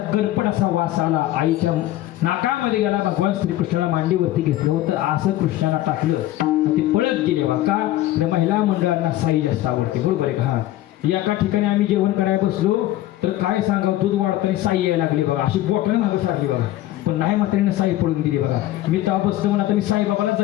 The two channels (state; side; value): quieter; right; 14.8 dB